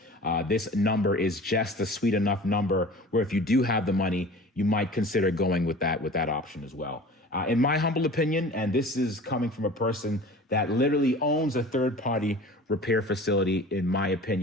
This number is just a sweet enough number where if you do have the money, you might consider going with that option as well. In my humble opinion, and this is coming from a person that literally owns a third-party repair facility, in my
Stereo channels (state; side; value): normal; both; correlation 0.41